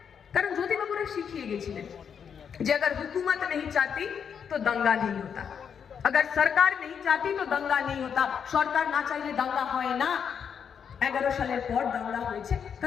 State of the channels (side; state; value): right; quieter; 7.3 dB